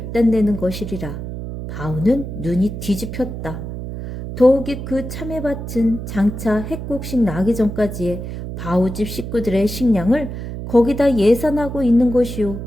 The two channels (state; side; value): noise; right; hum, 7 dB below the sound